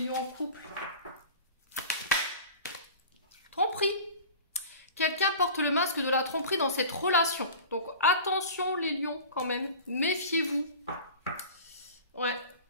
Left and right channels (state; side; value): inverted; both; correlation -0.37